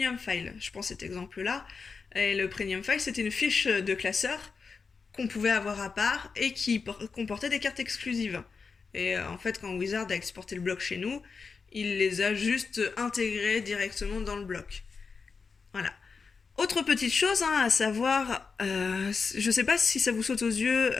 files. Je prends cet exemple-là. Et le premium file, c'était une fiche de classeur qu'on pouvait avoir à part et qui comportait des cartes exclusives. Et en fait, quand Wizard a exporté le bloc chez nous, il les a juste intégrées directement dans le bloc. Voilà. Autre petite chose à savoir, je sais pas si ça vous saute aux yeux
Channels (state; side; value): quieter; right; 5.0 dB